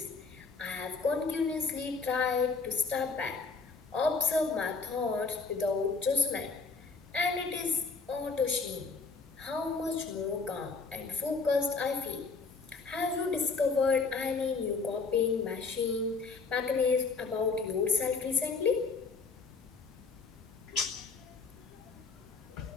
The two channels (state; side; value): quieter; right; 4.5 dB